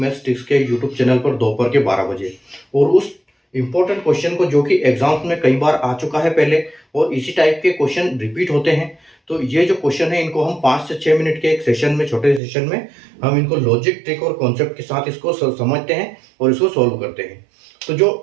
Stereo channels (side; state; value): left; drops out; at 12.4 s